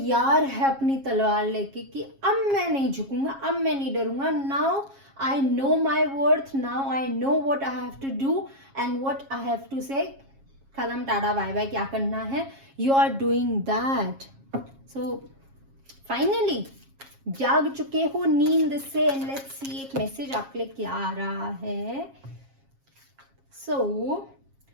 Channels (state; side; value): late; left; 7.4 ms